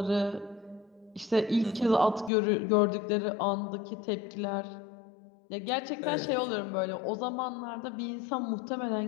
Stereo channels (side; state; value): right; drops out; at 2.3 s